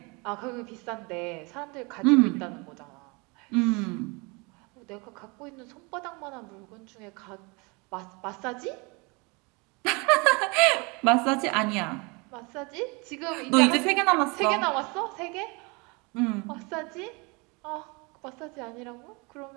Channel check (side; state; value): left; quieter; 28.7 dB